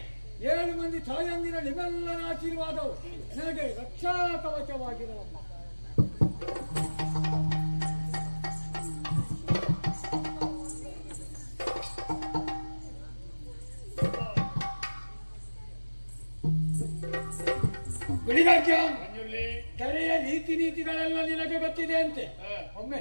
7 ಮಂದಿ ತಾಯಂದಿರ ನಿಮ್ಮೆಲ್ಲರ ಆಶೀರ್ವಾದವು ನನಗೆ ರಕ್ಷಾ ಕವಚವಾಗಿರಲಮ್ಮ. ಕೆರೆಯ ರೀತಿ ನೀತಿಗಳೆಲ್ಲ ನಿನಗೆ ಗೊತ್ತಿದೆ ಅಂತೆ, ಒಮ್ಮೆ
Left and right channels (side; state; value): both; inverted; correlation -1.00